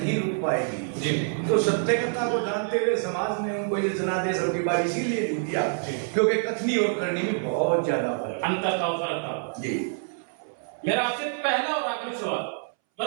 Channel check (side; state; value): left; silent; 61 dB below the other